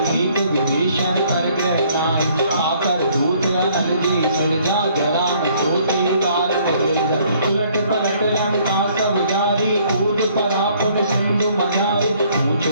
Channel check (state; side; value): inverted; both; correlation -0.62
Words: एक विभीषण कर ग्रह नाही। आकर दूत अनल जी सरिजा, जरा न सोती कारत गिरजा। उलट पलट लंका सब जारी, कूद पड़ा पुन सिंधु मझारी। पूछ